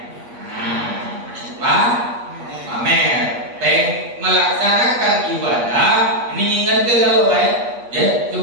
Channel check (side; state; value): left; late; 8.4 ms